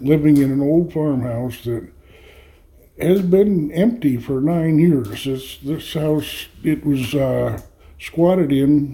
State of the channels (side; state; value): both; identical; correlation 1.00